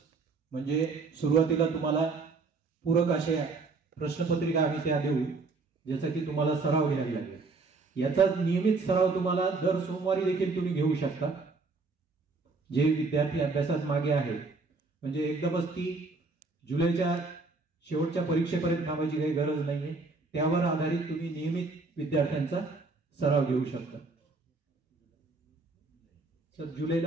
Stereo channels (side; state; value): left; quieter; 3.9 dB